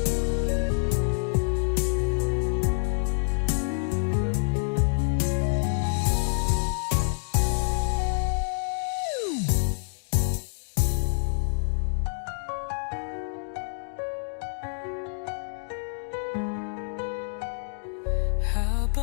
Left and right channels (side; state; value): right; silent; 60 dB below the other